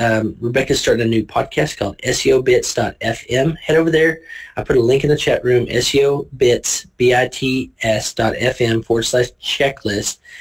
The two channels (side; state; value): both; identical; correlation 1.00